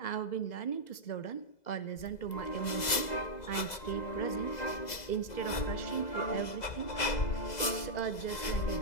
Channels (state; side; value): late; right; 2.0 ms